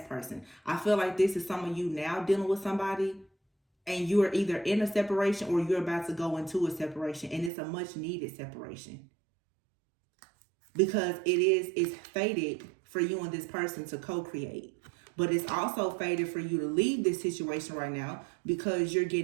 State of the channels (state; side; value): drops out; left; at 7.5 s